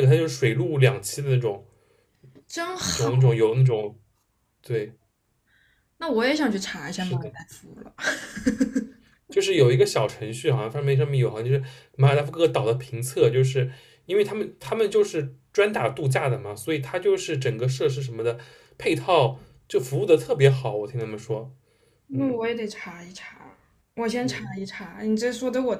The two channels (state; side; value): identical; both; correlation 1.00